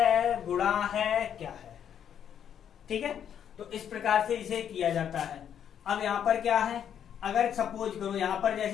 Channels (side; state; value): right; quieter; 9.0 dB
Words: गुणा है, क्या है। ठीक है, तो इस प्रकार से इसे किया जाता है। अब यहां पर क्या है, अगर सपोज करो यहां पर